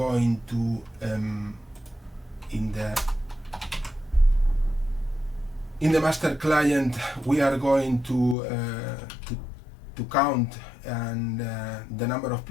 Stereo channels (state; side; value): drops out; right; at 8.3 s